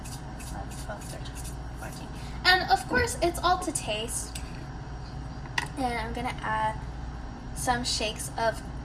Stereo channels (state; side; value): identical; both; correlation 1.00